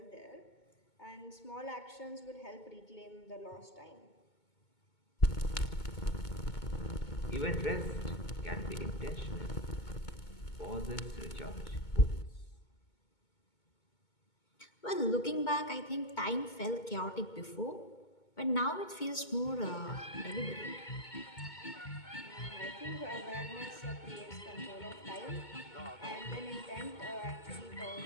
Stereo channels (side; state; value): right; late; 2.2 ms